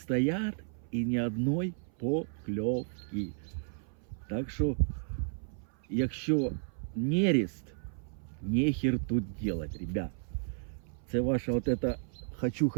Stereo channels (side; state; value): left; silent; 56 dB below the other